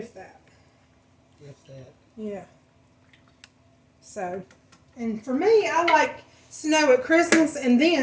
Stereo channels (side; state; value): both; identical; correlation 1.00